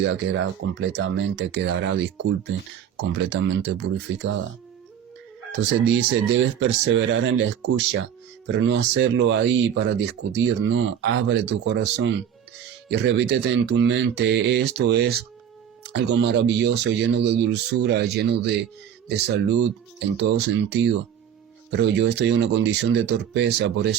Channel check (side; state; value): left; quieter; 9.0 dB